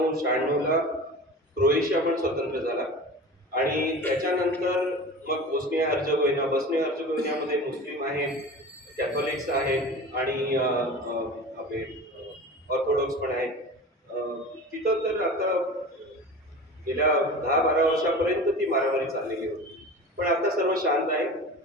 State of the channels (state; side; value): normal; both; correlation 0.35